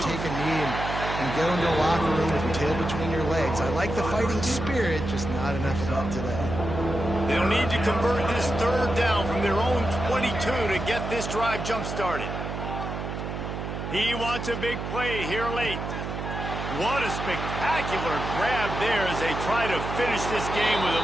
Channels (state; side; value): noise; right; hum, 5 dB below the sound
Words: take a knee and go into the locker room with your tail between your legs. I like the fighting spirit, just not enough of that today. They'll need to convert this 3rd down from their own 22 to get this drive jump-started. He wants a big play here late. What a spectacular grab there as they try to finish this game with